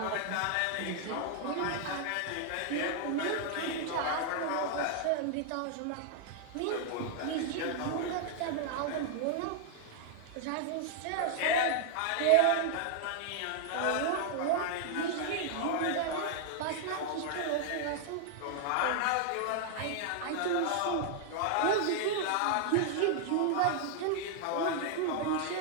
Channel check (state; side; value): different; both; correlation 0.00